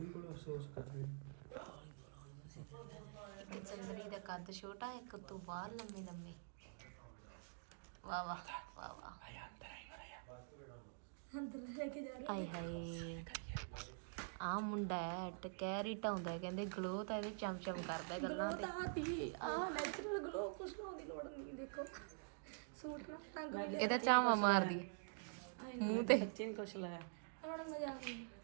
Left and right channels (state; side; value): silent; left; digital silence